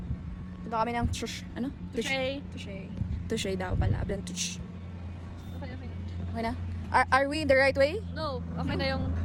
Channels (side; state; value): both; identical; correlation 1.00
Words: Punta kami ng tush. Ano? Tushay. Tushay. Tushay daw pala. Ablan tush. Okay, okay. Okay na? Are we in the right way? No, okay na yung